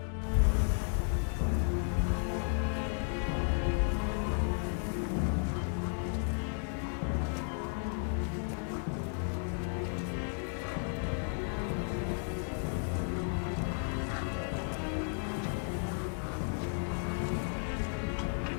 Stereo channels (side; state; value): right; silent; 55 dB below the other